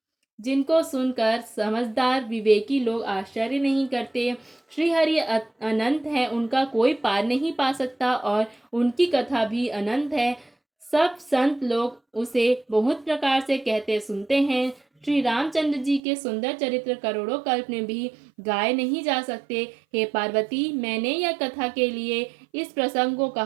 जिनको सुनकर समझदार विवेकी लोग आश्चर्य नहीं करते। श्री हरि अनंत है, उनका कोई पार नहीं पा सकता और उनकी कथा भी अनंत है। सब संत लोग उसे बहुत प्रकार से कहते सुनते हैं। श्री रामचंद्र जी के सुंदर चरित्र करोड़ों कल्प में भी गाए नहीं जा सकते। हे पार्वती, मैंने यह कथा के लिए इस प्रसंग को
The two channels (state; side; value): drops out; left; at 16.0 s